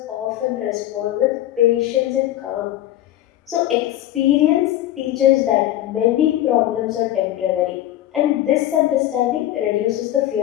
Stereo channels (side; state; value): right; quieter; 13.5 dB